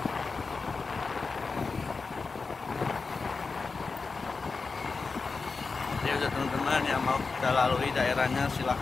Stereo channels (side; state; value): right; quieter; 4.4 dB